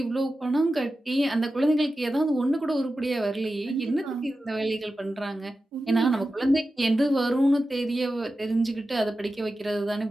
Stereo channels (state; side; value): normal; both; correlation 0.93